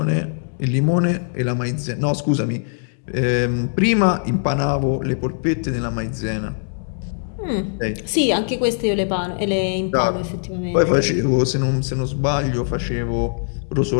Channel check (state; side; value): silent; right; 63 dB below the other